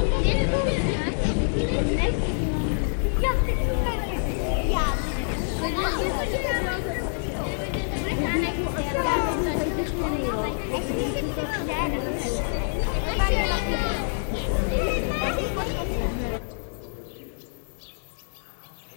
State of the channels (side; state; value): right; silent; digital silence